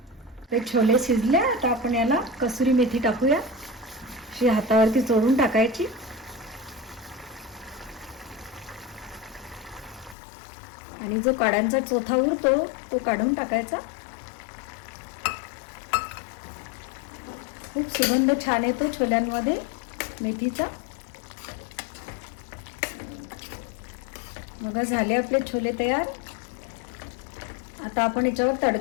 ते छोले शिजले. आता आपण याला कसुरी मेथी टाकूया. अशी हातावरती चोळून टाकायची. आणि जो काड्यांचा चोथा उरतो तो काढून टाकायचा. खूप सुगंध छान येतो छोल्यांमध्ये मेथीचा. बघा झाले आपले छोले तयार. आता आपण याच्यावर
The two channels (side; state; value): right; drops out; at 10.2 s